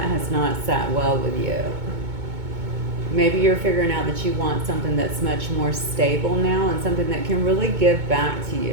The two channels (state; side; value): late; left; 2.2 ms